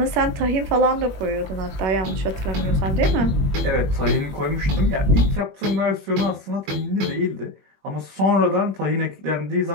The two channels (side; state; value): left; late; 21 ms